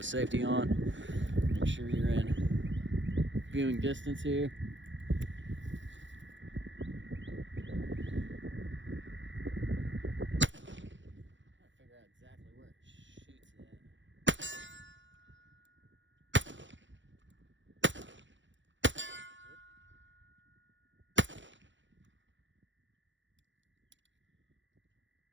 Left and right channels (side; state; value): left; late; 0.54 ms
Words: safety on. Make sure you're in viewing distance here. Figure out exactly where it shoots at.